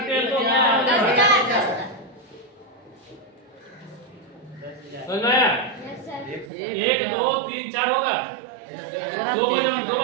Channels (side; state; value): left; drops out; at 6.5 s